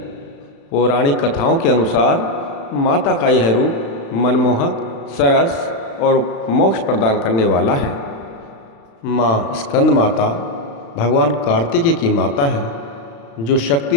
पौराणिक कथाओं के अनुसार माता का यह रूप मनमोहक, सरस और मोक्ष प्रदान करने वाला है। माँ स्कंद माता भगवान कार्तिकेय की माता है, जो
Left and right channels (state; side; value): late; right; 35 ms